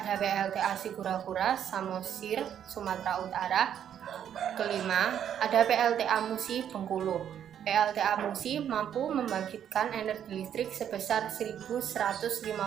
PLTA Sigura-Gura, Samosir, Sumatera Utara. Kelima ada PLTA Musi, Bengkulu. PLTA Musi mampu membangkitkan energi listrik sebesar 1.150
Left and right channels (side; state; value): left; quieter; 9.4 dB